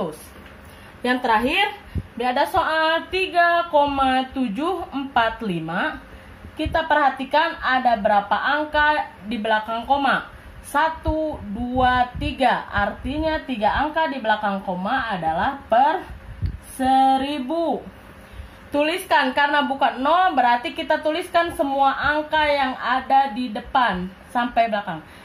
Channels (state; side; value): identical; both; correlation 1.00